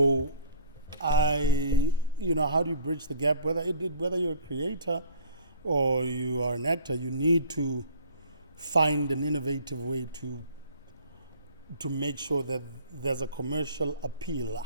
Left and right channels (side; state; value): both; inverted; correlation -0.50